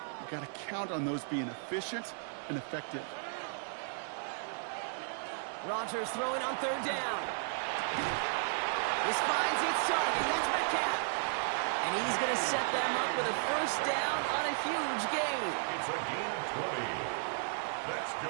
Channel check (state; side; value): silent; left; 55 dB below the other